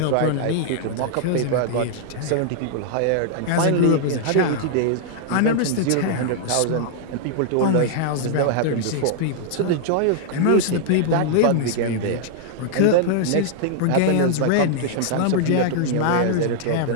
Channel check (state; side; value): different; both; correlation -0.01